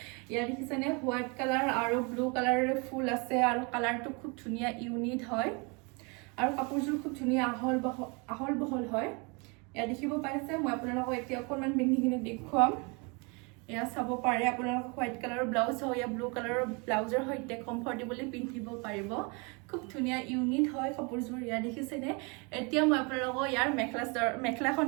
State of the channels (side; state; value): left; quieter; 31.1 dB